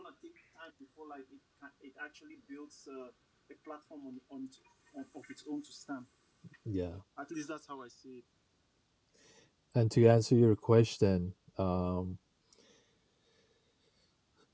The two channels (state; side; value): identical; both; correlation 1.00